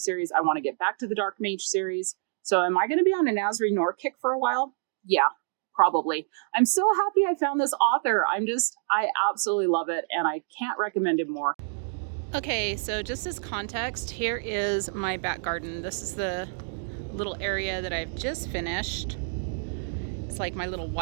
I want to get back to the Dark Mage series. So am I going to be on a Nazri Noor kick for a while? Yeah. Probably. I'm so happy I found this author. I absolutely love it, and I can't recommend him more. Okay, so just as context, here is my back garden. This is the little area that I've just finished. It's like my little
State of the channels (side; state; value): left; silent; digital silence